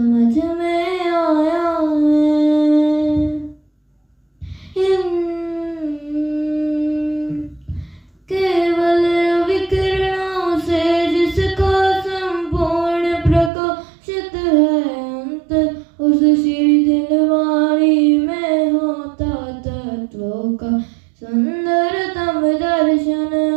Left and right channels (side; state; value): left; drops out; at 13.5 s